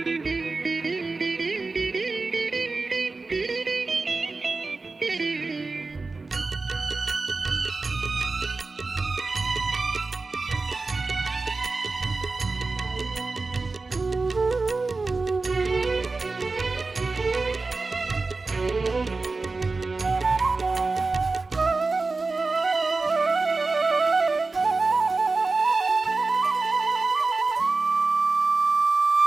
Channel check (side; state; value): left; quieter; 3.8 dB